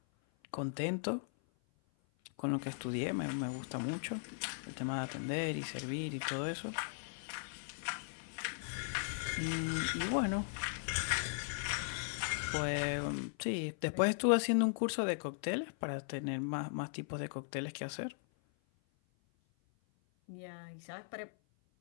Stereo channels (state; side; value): silent; right; 52 dB below the other